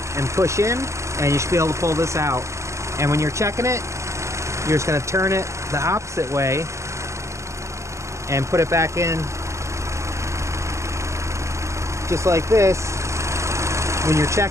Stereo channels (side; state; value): left; late; 0.14 ms